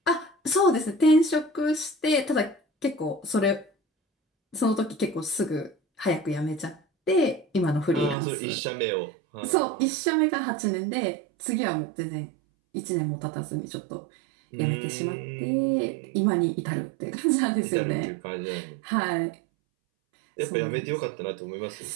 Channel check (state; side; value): drops out; left; at 8.2 s